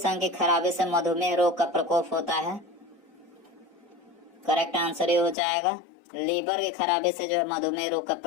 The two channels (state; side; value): drops out; right; at 5.4 s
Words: अंग की खराबी से मधुमेह रोग का प्रकोप होता है? करेक्ट आंसर ये हो जाएगा। लीवर की खराबी से जो है मधुमेह रोग का